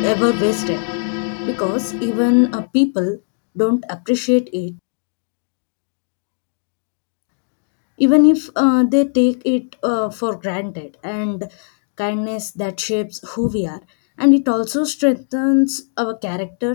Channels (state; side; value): silent; right; digital silence